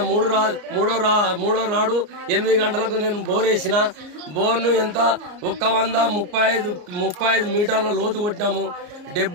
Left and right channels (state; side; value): late; left; 34 ms